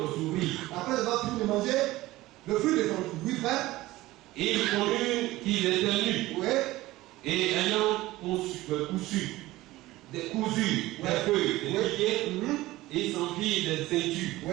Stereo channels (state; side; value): quieter; left; 17.8 dB